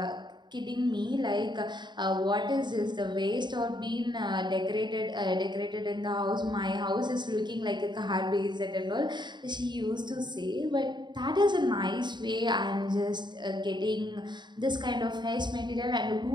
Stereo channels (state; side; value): late; left; 0.22 ms